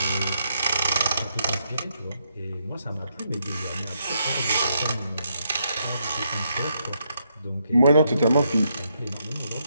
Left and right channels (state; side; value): inverted; both; correlation -0.78